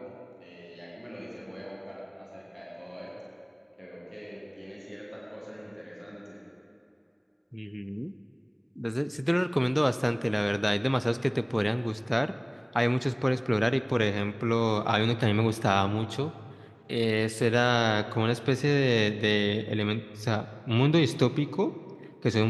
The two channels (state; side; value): identical; both; correlation 1.00